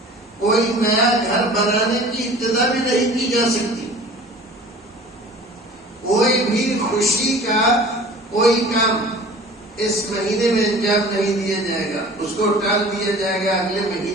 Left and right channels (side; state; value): both; normal; correlation 0.44